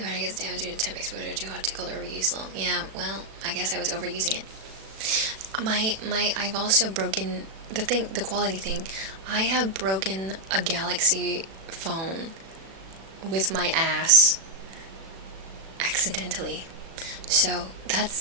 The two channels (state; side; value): late; left; 36 ms